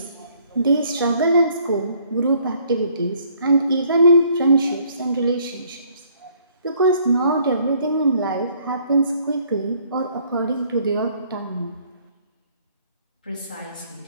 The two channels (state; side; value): inverted; both; correlation -0.63